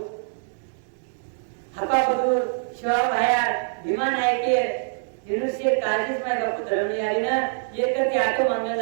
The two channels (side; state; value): left; silent; digital silence